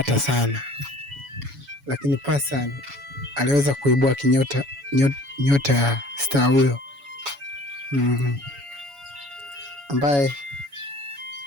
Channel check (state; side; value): late; left; 7.1 ms